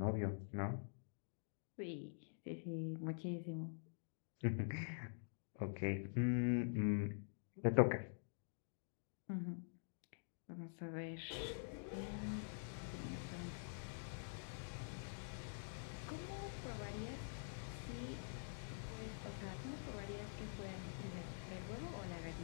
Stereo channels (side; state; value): right; silent; digital silence